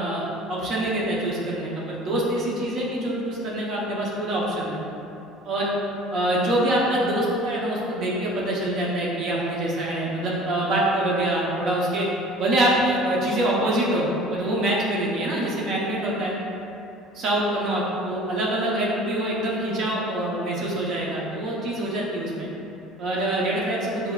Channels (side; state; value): both; normal; correlation 0.45